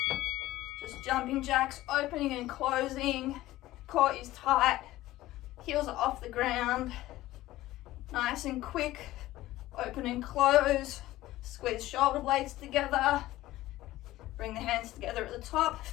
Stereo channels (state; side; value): quieter; right; 16.2 dB